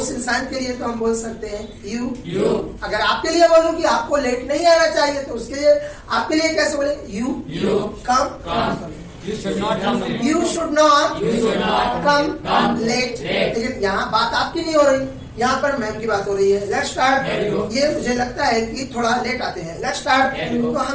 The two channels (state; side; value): identical; both; correlation 1.00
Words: इंसान के लिए तो हम बोल सकते हैं यू। अगर आपके लिए बोलूं कि आपको लेट नहीं आना चाहिए तो उसके लिए आपके लिए कैसे बोले? You come. You should not come late। लेकिन यहाँ बात आपकी नहीं हो रही, यहाँ पर मैम की बात हो रही है। Let's start. ये मुझे लगता है कि थोड़ा लेट आते हैं। Let's start. तो